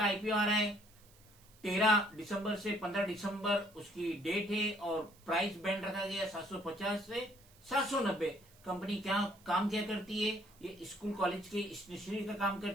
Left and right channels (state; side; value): noise; right; hiss, 27 dB below the sound